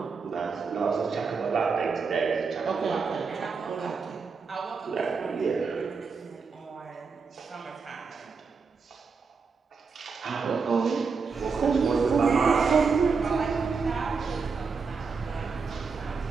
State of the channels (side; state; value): left; quieter; 5.1 dB